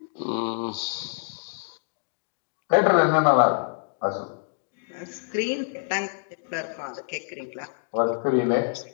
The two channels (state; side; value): silent; right; digital silence